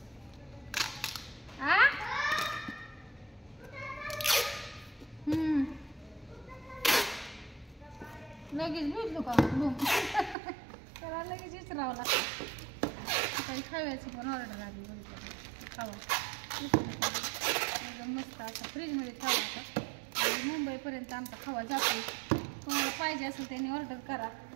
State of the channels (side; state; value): left; drops out; at 10.4 s